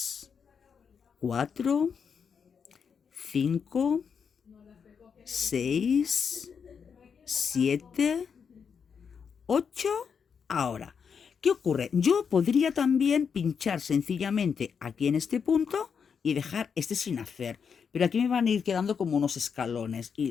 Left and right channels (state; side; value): quieter; right; 6.5 dB